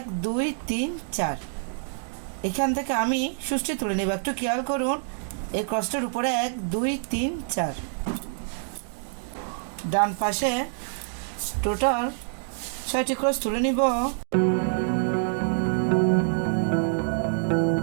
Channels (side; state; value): left; silent; digital silence